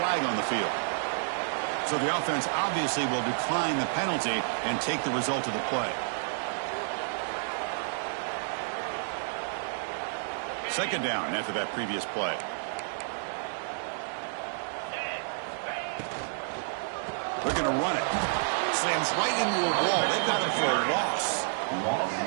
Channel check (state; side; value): silent; left; digital silence